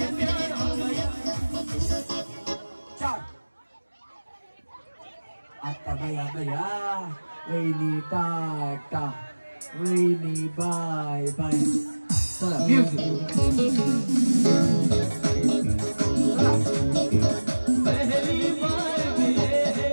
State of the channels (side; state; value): both; inverted; correlation -1.00